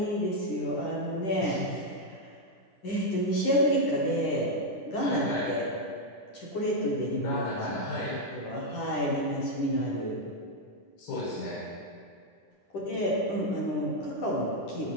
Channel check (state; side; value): late; right; 10 ms